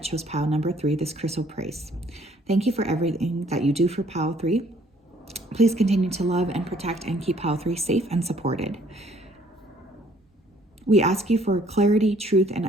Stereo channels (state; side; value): normal; both; correlation 0.61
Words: chose pile number 3, this Crystal Praise? Thank you for everything that you do for pile 3. Please continue to love and protect and keep pile 3 safe and supported. We ask you for clarity, truth, and